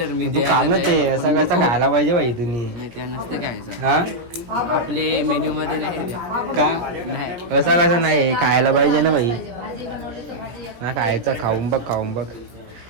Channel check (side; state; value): left; late; 17 ms